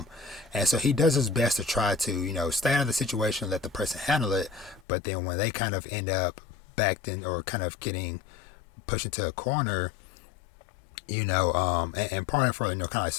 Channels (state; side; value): drops out; right; at 4.8 s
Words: And so he does his best to try to, stay out of the situation, let the person handle it. But then when they kind of end up backed in or kind of getting pushed into a corner, and pardon for, kind of